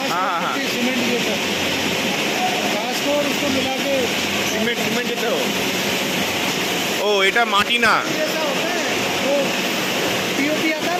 हाँ, हाँ, हाँ। पट्टी सीमेंट जैसा घास को और उसको मिला के सीमेंट देते हो? ओ এটা মাটি না, जैसा होता है वो पीओपी आता है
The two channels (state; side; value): identical; both; correlation 1.00